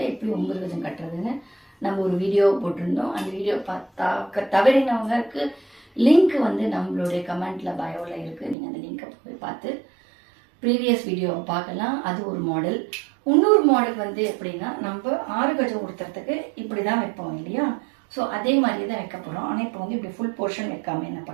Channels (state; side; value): drops out; left; at 8.6 s